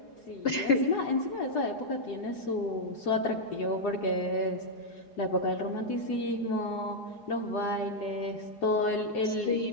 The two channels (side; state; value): right; late; 4.8 ms